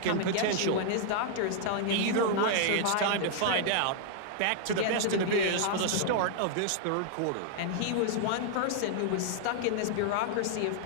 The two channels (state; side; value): different; both; correlation -0.01